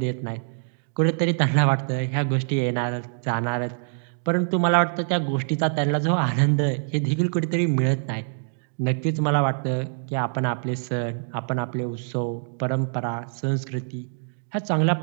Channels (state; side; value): silent; left; digital silence